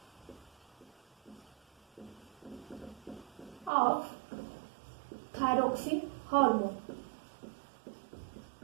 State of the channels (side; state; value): left; drops out; at 3.7 s